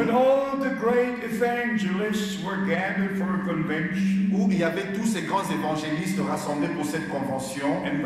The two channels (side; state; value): both; identical; correlation 1.00